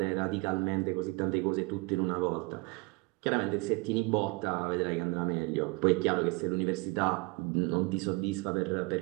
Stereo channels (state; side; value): quieter; left; 25.9 dB